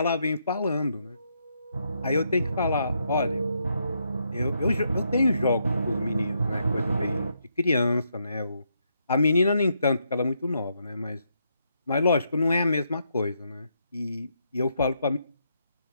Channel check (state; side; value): inverted; both; correlation -0.78